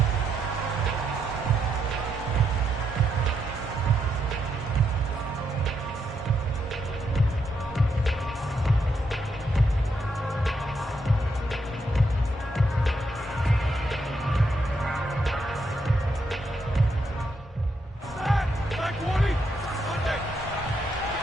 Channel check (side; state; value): both; normal; correlation 0.79